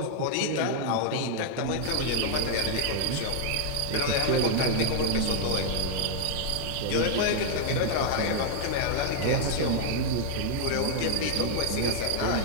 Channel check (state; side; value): different; both; correlation -0.01